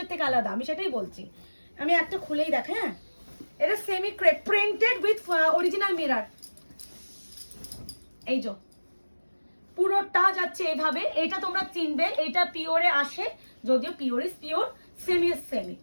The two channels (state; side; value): inverted; both; correlation -1.00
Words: থেকে আলাদা, আমি সেটাই বলছি। আমি একটা খুলেই দেখ, হ্যাঁ, এটা semi crepe printed with original mirror. এই যে পুরোটা যাচ্ছে এইভাবে, এটা তোমরা চিনবে, এটা পিওরে আসে, যদিও pure is pure, semi is semi.